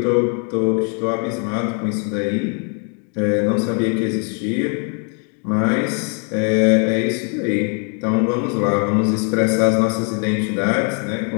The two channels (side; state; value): right; quieter; 39.9 dB